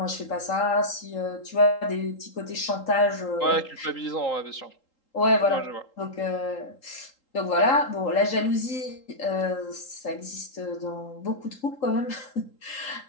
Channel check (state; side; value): late; right; 3.8 ms